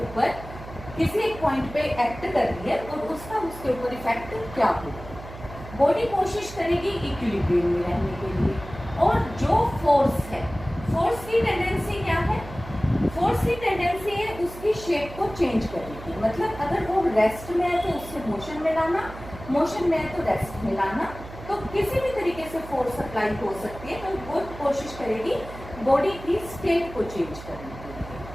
ऊपर किसी एक पॉइंट पे एक्ट कर रही है और उसका उसके ऊपर इफेक्ट क्या होगा। बॉडी कोशिश करेगी इक्विलिब्रियम में रहने के लिए, और जो फोर्स है, फोर्स की टेंडेंसी क्या है? फोर्स की टेंडेंसी है उसकी शेप को चेंज करने की। मतलब अगर वो रेस्ट में है तो उससे मोशन में लाना, मोशन में है तो रेस्ट में लाना। तो किसी भी तरीके से फोर्स अप्लाई हो सकती है, तो वो कोशिश करेगी बॉडी की स्टेट को चेंज करने के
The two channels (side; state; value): right; noise; hum, 14 dB below the sound